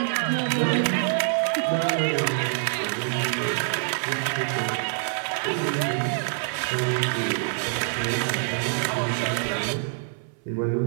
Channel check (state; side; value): silent; left; 60 dB below the other